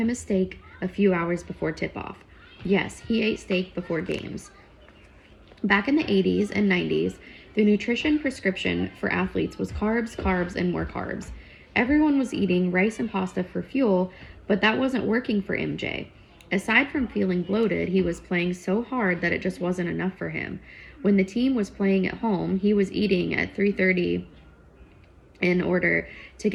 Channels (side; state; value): both; identical; correlation 1.00